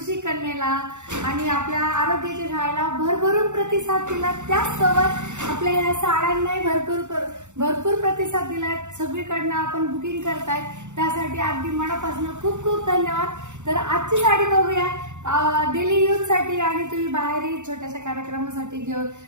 कन्येला आणि आपल्या आरोग्याच्या शाळेला भरभरून प्रतिसाद दिला. त्याचसोबत आपल्या या साड्यांनाही भरपूर प्रतिसाद दिलाय. सगळीकडनं आपण बुकिंग करताय, त्यासाठी अगदी मनापासून खूप खूप धन्यवाद. तर आजची साडी बघूया. डेली यूज साठी आणि तुम्ही बाहेरही छोट्याशा कार्यक्रमासाठी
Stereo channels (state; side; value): late; left; 0.84 ms